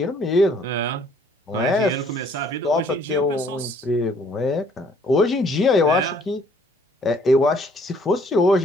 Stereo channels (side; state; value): both; normal; correlation 0.61